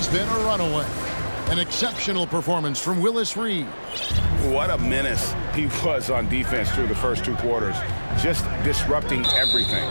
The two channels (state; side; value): inverted; both; correlation -1.00